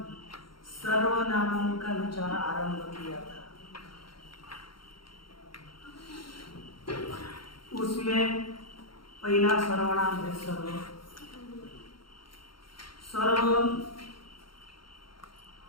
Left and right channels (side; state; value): right; late; 0.73 ms